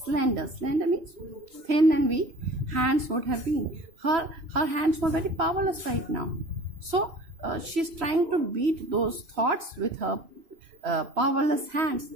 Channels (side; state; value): left; late; 3.0 ms